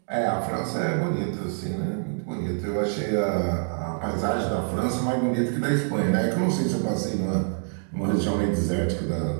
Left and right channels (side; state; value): left; silent; digital silence